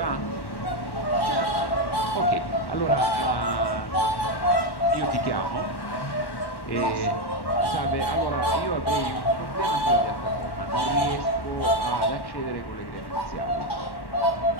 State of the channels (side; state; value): right; late; 1.1 ms